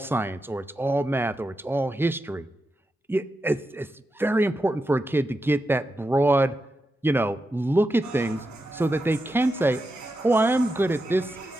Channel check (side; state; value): both; normal; correlation 0.88